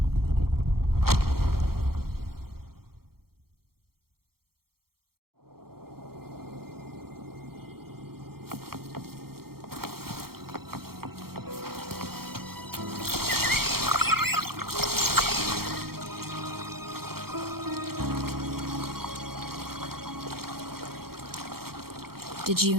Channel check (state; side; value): late; left; 0.94 ms